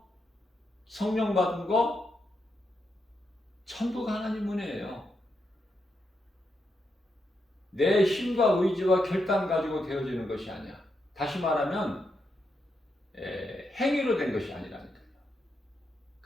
성령 받은 거 전부가 하나님 은혜예요. 내 힘과 의지와 결단 가지고 되어지는 것이 아니야. 다시 말하면 행위로 된 것이 아니라니까요.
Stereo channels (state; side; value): normal; both; correlation 0.83